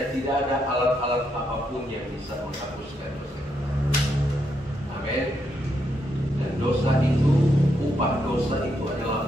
tidak ada alat-alat apapun yang bisa menghapuskan dosa kita. Amin. Dan dosa itu, upah dosa itu adalah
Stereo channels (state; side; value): normal; both; correlation 0.79